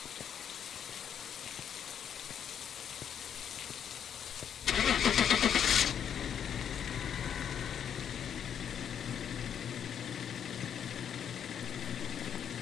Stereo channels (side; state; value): right; quieter; 8.5 dB